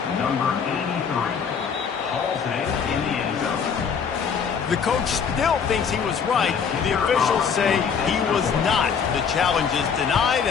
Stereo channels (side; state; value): right; quieter; 6.6 dB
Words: Number 83. In the end zone. The coach still thinks he was right. The officials say he was not. The challenge is denied